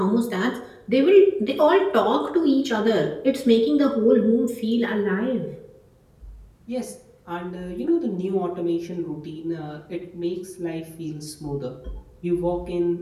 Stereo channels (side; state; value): both; identical; correlation 1.00